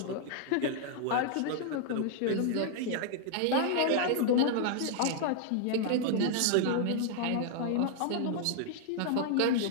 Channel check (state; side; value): different; both; correlation 0.00